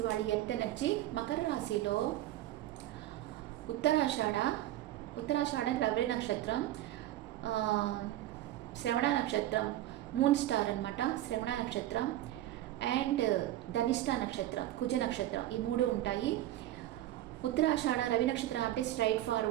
వాళ్ళు ఎర్త్ ఎనర్జీ. మకర రాశిలో ఉత్తరాషాఢ రవి నక్షత్రం, శ్రవణ నక్షత్రం, మూన్ స్టార్ అనమాట. శ్రవణ నక్షత్రం అండ్ ధనిష్ట నక్షత్రం, కుజ నక్షత్రం, ఈ మూడు ఉంటాయి. ఉత్తరాషాఢ రవి నక్షత్రం అంటే స్ట్రైట్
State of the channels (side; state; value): left; quieter; 14.1 dB